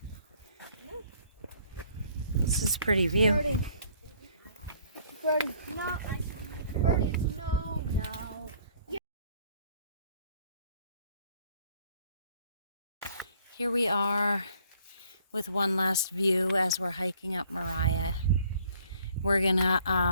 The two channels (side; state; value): both; inverted; correlation -0.59